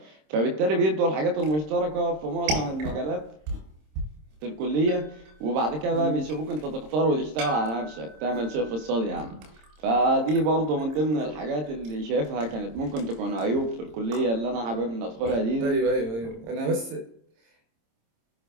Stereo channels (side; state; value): left; late; 26 ms